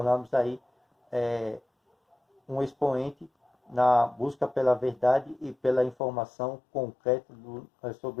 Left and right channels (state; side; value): drops out; right; at 6.0 s